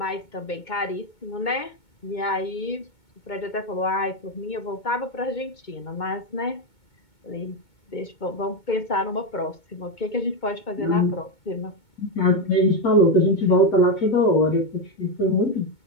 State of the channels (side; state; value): right; late; 2.2 ms